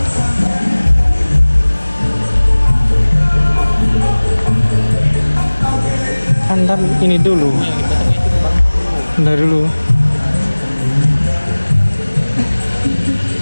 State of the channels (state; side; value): inverted; both; correlation -1.00